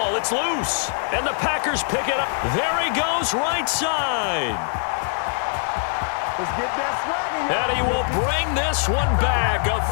It's loose. And the Packers pick it up. There he goes, right side. And he will bring this one back. A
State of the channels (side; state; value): right; silent; digital silence